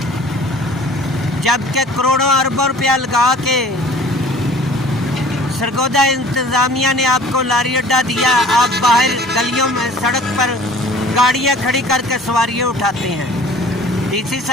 जबकि करोड़ों अरबों रुपया लगा के सरगोदा इंतज़ामिया ने आपको लारी अड्डा दिया। आप बाहर गलियों में सड़क पर गाड़ियां खड़ी करके सवारियां उठाते हैं। DC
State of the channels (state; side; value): normal; both; correlation 0.48